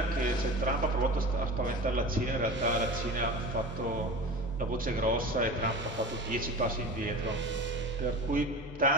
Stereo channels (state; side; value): normal; both; correlation 0.33